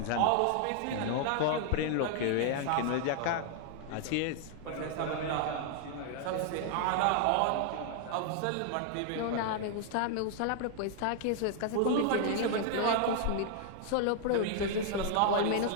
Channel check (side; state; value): both; different; correlation 0.00